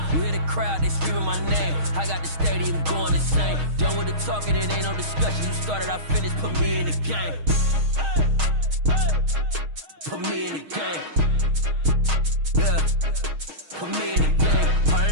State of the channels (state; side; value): late; left; 6.4 ms